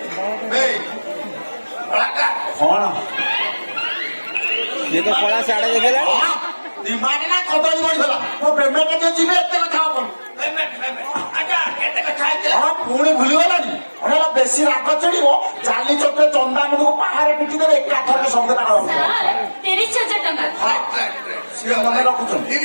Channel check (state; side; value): inverted; both; correlation -1.00